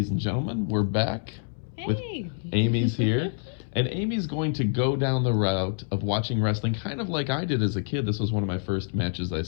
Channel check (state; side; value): silent; right; 60 dB below the other